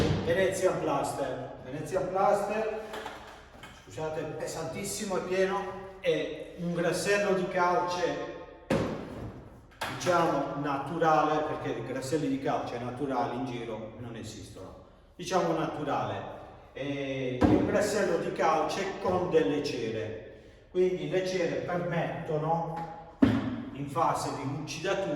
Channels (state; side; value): identical; both; correlation 1.00